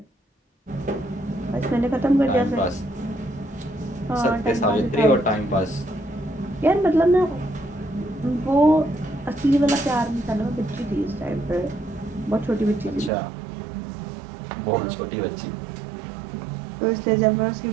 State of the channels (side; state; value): left; drops out; at 13.1 s